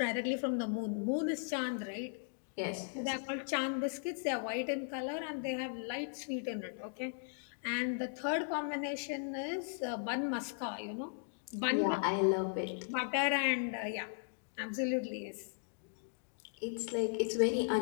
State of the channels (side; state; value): right; silent; digital silence